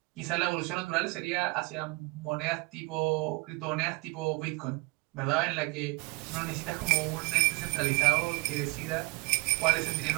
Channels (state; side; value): quieter; left; 27.1 dB